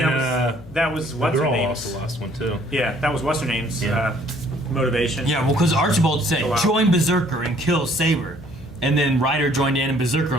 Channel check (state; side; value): noise; left; hum, 22 dB below the sound